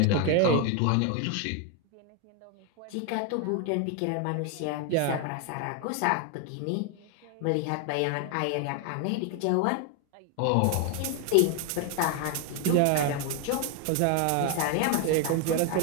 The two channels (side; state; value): both; different; correlation 0.01